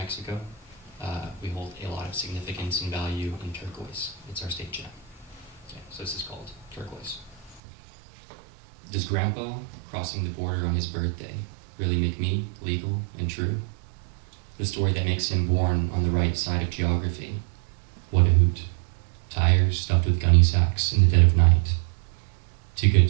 we hold a lot of significance and value in turquoise. It's our state gem. Okay, so this is called Turquoise. Does Grandpa crossing the border on his birthday really make me legal and true? The story that makes him born on the right side of geography. What a hoot. Tires stuffed with gunny sacks in the dead of night. Too good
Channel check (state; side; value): drops out; left; at 7.6 s